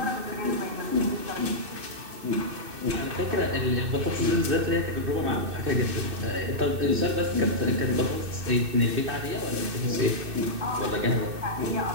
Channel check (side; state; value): left; late; 2.6 ms